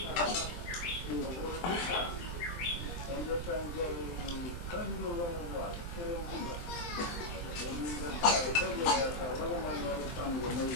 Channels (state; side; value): late; right; 23 ms